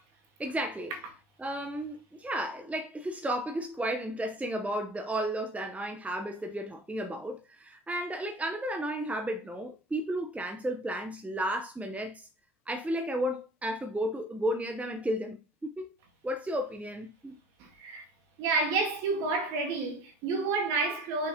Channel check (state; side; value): normal; both; correlation 0.47